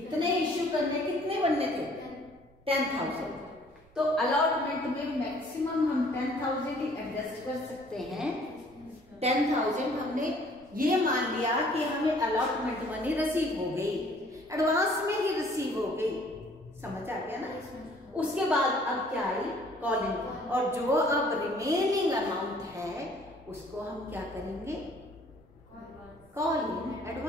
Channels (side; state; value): right; noise; rumble, 28 dB below the sound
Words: इश्यू करने, कितने बनने थे 10,000, तो अलॉटमेंट में मैक्सिमम हम 10,000 ही एडजस्ट कर सकते हैं। 10,000 हमने ये मान लिया कि हमें अलॉटमेंट मनी रिसीव हो गई, एडवांस में ही रिसीव हो गई। समझ आ गया ना? उसके बाद अब क्या आई कॉलिंग, और जो अब रिमेनिंग अमाउंट है उसको हम क्या करेंगे, कॉलिंग